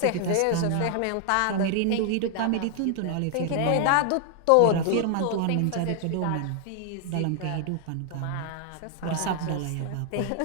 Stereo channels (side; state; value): both; different; correlation 0.00